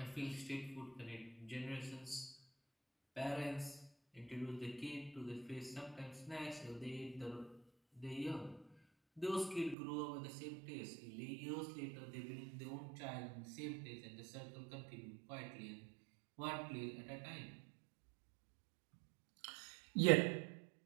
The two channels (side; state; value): left; drops out; at 9.8 s